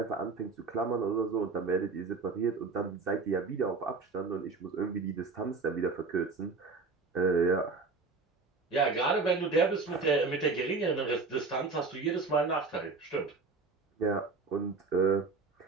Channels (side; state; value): left; quieter; 4.3 dB